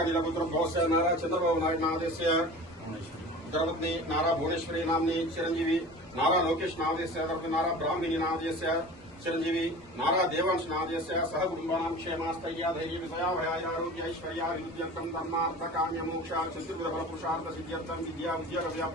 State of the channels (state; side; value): normal; both; correlation 0.38